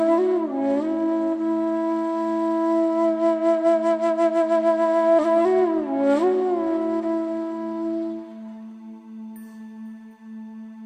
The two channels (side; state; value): both; identical; correlation 1.00